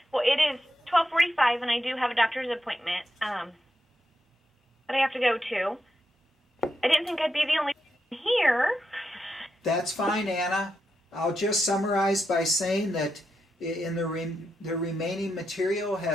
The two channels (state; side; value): normal; both; correlation 0.85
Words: Well, it is 12:45, and I do have a doctor's appointment that I have to go to. I didn't think I'd be the only one here. That's fine, Anna. I'll just summarize by saying that in the remaining material